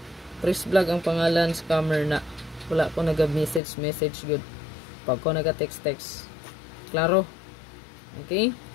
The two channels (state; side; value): drops out; right; at 3.6 s